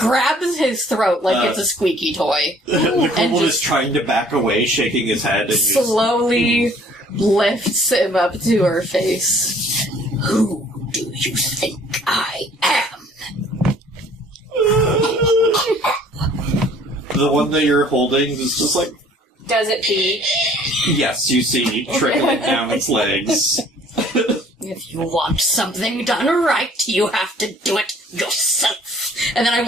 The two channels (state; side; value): normal; both; correlation 0.56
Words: his throat like it's a squeaky toy. The kobold just is trying to back away, shaking his head, and slowly lifts him up to her face. Who do you think I am? the one that you're holding is just like, Does it pee? yes, you see trickling down its legs. If you want something done right, you have to do it yourself. And then I